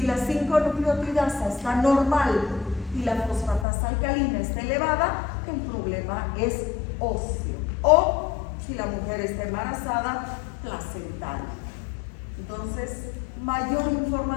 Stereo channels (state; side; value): drops out; right; at 3.7 s